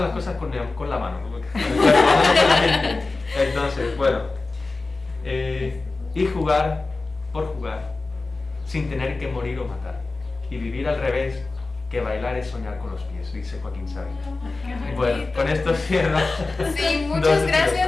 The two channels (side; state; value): right; quieter; 3.6 dB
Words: las cosas? Con la mano, con el cuerpo, no con la mente. Entonces, bueno, y jugar por jugar, sin tener que morir o matar. Y vivir al revés, que bailar es soñar con los pies, dice Joaquín Sabina. Bueno, con esto cierro. Sí, muchas